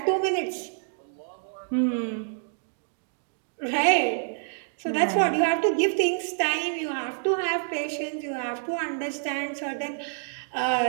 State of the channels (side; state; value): left; silent; digital silence